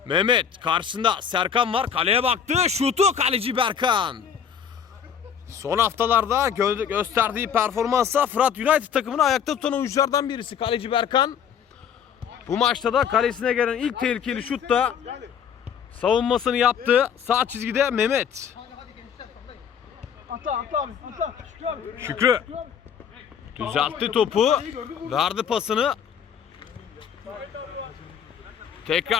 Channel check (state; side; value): quieter; right; 7.9 dB